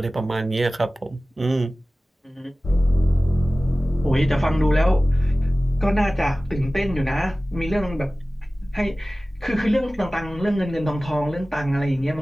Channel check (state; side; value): normal; both; correlation 0.97